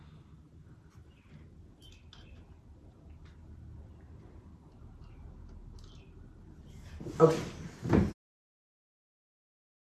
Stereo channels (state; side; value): identical; both; correlation 1.00